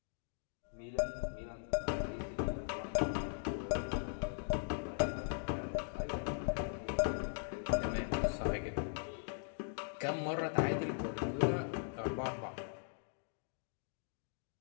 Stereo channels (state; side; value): silent; right; digital silence